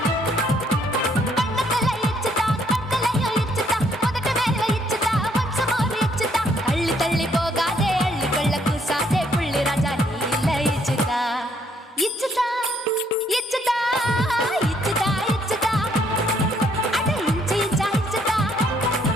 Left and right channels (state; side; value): normal; both; correlation 0.68